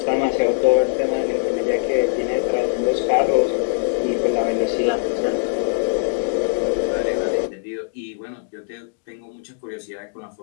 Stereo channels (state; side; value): silent; right; digital silence